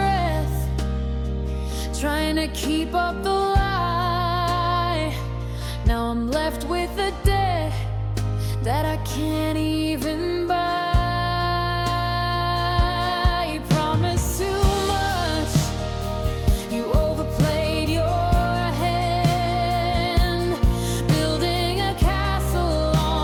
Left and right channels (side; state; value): both; identical; correlation 1.00